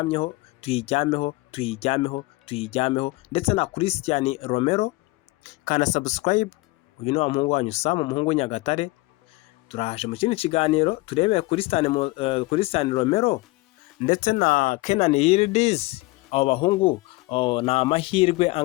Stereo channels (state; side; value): quieter; right; 22.3 dB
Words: ndetse na Christian Romero. Kana subscribe. Uyu ni wa muhungu wanyu Sam, umuhungu Nyagatare. Turaje mu kindi kiganiro turebe Christian Romero ndetse na Kenan Yildiz. Abo bahungu na amahirwe